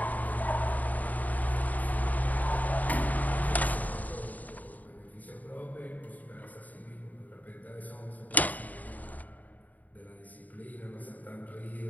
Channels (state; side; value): late; right; 0.077 ms